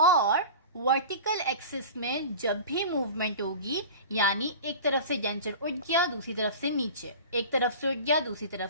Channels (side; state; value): both; inverted; correlation -0.35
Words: वर्टिकल एक्सिस में जब भी मूवमेंट होगी, यानी एक तरफ से डेंचर उठ गया दूसरी तरफ से नीचे, एक तरफ से उठ गया दूसरी